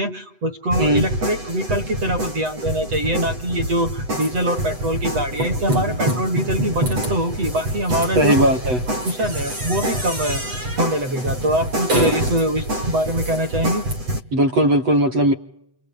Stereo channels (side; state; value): left; late; 8.0 ms